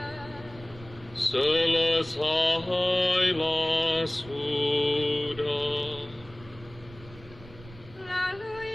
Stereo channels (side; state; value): right; noise; rumble, 20 dB below the sound